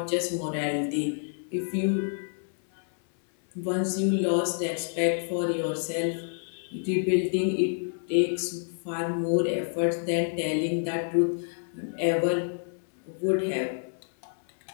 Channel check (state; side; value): silent; right; 59 dB below the other